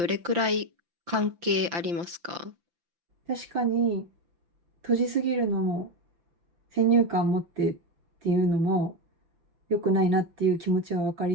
れくらい関係ありますか？確かに、閉じすぎるのも、先入観持ってっていうのも良くないなっていう気持ちは分か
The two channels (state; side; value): late; left; 5.9 ms